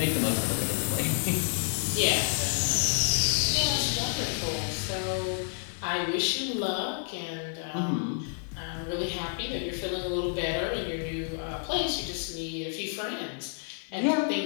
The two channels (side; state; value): right; silent; digital silence